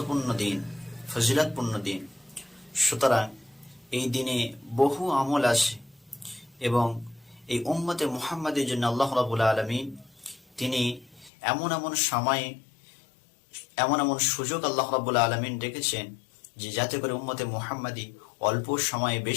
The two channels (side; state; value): right; drops out; at 11.3 s